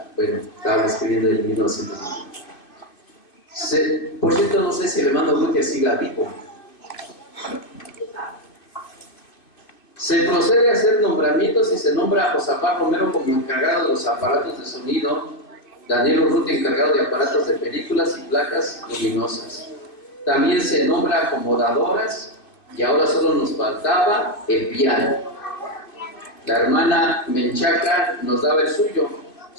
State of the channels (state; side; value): late; right; 2.5 ms